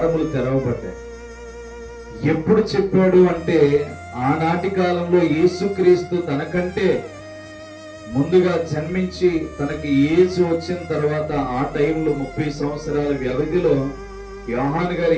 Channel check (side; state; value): both; identical; correlation 1.00